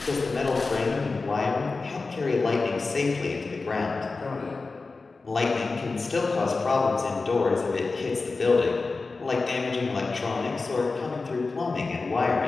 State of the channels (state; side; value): quieter; right; 3.9 dB